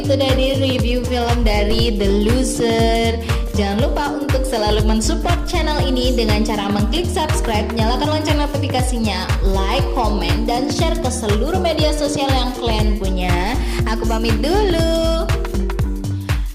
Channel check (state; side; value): identical; both; correlation 1.00